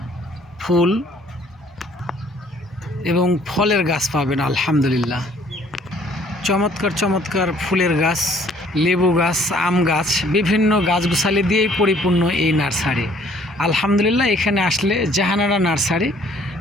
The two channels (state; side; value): normal; both; correlation 0.60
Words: ফুল এবং ফলের গাছ পাবেন। আলহামদুলিল্লাহ, চমৎকার চমৎকার ফুলের গাছ, লেবু গাছ, আম গাছ, বিভিন্ন গাছগুছালি দিয়েই পরিপূর্ণ এই নার্সারি। আলহামদুলিল্লাহ, এখানে আসলে জাহানারা নার্সারি,